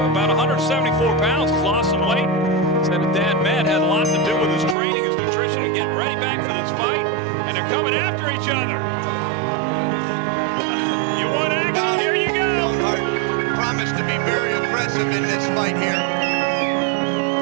about 174 pounds. He's lost some weight. Said his dad, Matt, had a lot to do with his training, his nutrition, and getting ready back for this fight. And they're coming after each other. You want action? Here you go. Leonard promised to be very aggressive in this fight here.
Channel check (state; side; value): drops out; left; at 4.8 s